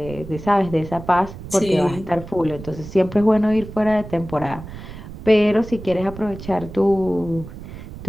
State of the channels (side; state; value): right; noise; rumble, 13 dB below the sound